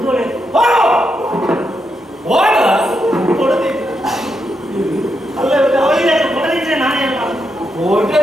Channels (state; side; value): normal; both; correlation 0.83